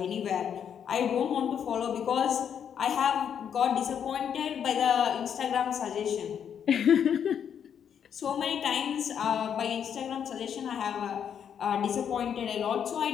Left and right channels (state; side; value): quieter; right; 8.2 dB